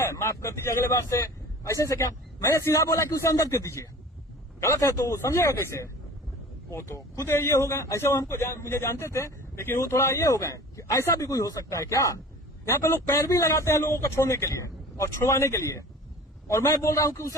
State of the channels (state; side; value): normal; both; correlation 0.42